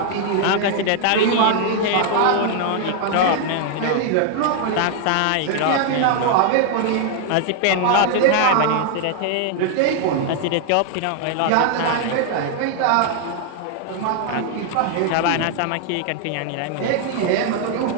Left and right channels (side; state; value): both; different; correlation 0.00